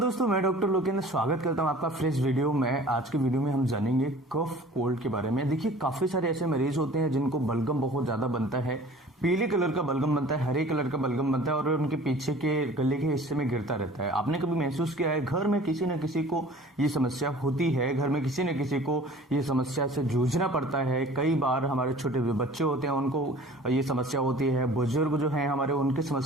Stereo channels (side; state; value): both; normal; correlation 0.46